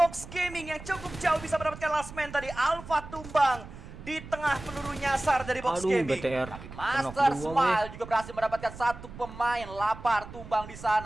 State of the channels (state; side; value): noise; right; rumble, 14 dB below the sound